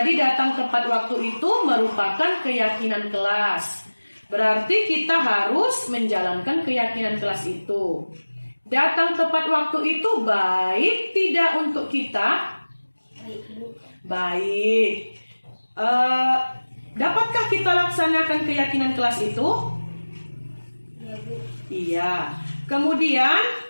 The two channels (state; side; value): inverted; both; correlation -1.00